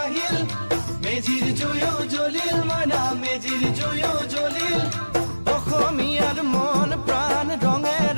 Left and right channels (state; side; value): inverted; both; correlation -1.00